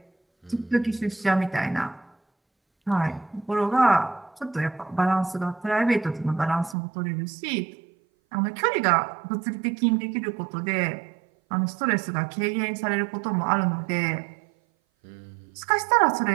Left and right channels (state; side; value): drops out; left; at 6.8 s